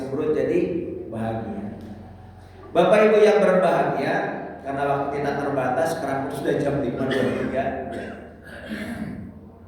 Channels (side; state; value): both; identical; correlation 1.00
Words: jadi bahagia. Bapak Ibu yang berbahagia, karena waktu kita terbatas, sekarang sudah jam